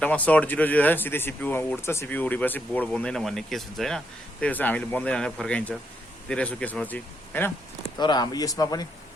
सर्ट 0 सिधै सिपियुमा उड्छ, सिपियु उडेपछि बोर्ड बन्दैन भन्ने केस हुन्छ होइन। त्यही भएर हामीले बन्दैन भनेर फर्काइन्छ धेरै जस्तो केसमा चाहिँ होइन। तर हाम्रो यसमा पनि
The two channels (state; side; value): normal; both; correlation 0.77